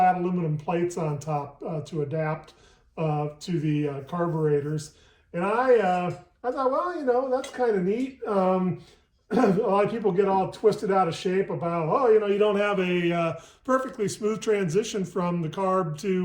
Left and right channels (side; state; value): both; identical; correlation 1.00